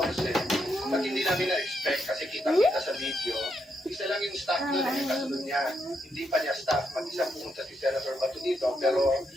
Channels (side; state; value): both; normal; correlation 0.80